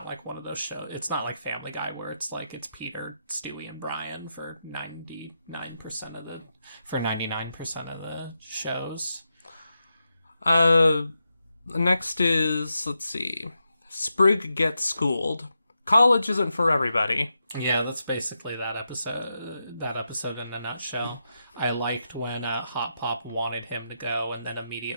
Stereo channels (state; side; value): inverted; both; correlation -0.86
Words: like one of those shows. It's not like Family Guy where it's like it's Peter, Stewie, and Brian for 99% of the shows. Next is, let's see, Sprig gets schooled. College isn't for everybody. Yeah, that's basically that episode. That episode in a nutshell. I liked when Hot Pop wanted him to go and then